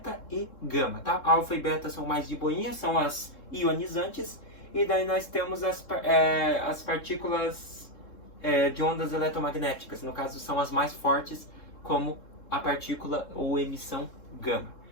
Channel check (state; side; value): late; right; 3.7 ms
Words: e gama, tá? Alfa e beta são mais de boinha, são as ionizantes. E daí nós temos as partículas de ondas eletromagnéticas. No caso, são as mais fortes, como a partícula ou emissão gama.